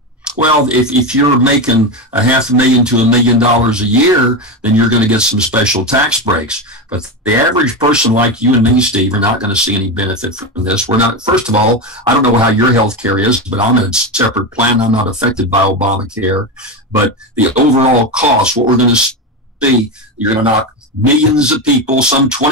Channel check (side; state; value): both; normal; correlation 0.16